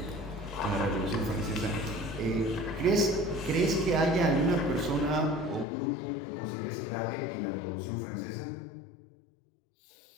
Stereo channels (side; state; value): right; drops out; at 5.7 s